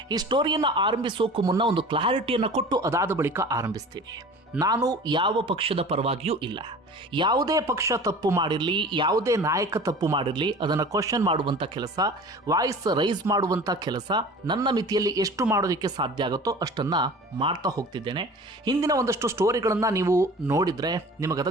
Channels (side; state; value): both; normal; correlation 0.40